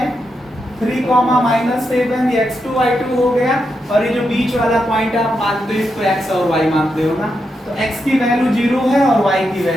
3,-7, ये x2 y2 हो गया और ये जो बीच वाला पॉइंट आप मानते हो इसको x और y मानते हो ना, तो x की वैल्यू 0 है और y की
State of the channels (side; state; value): both; normal; correlation 0.85